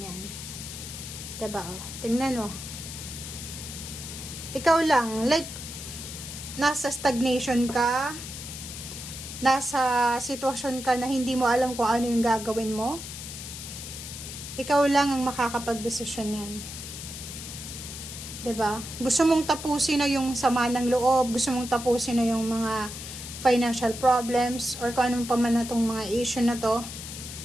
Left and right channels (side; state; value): left; noise; hiss, 10 dB below the sound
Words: yan. Diba? Tingnan mo. Ikaw lang, like, nasa stagnation ka, nasa sitwasyon ka na hindi mo alam kung ano yung gagawin mo, ikaw lang ang makakapag-desisyon yan. 'Di ba? Gusto mong tapusin na yung sama ng loob, gusto mong tapusin na yung mga financial problems, or kung anong pa man na tong mga issue na to,